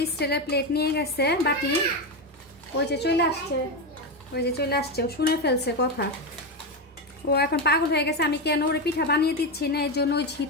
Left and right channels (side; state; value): both; normal; correlation 0.12